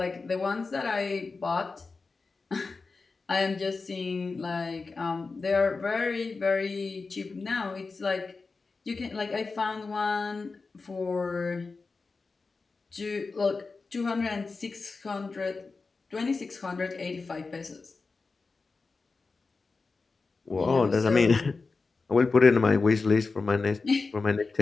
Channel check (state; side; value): quieter; right; 4.2 dB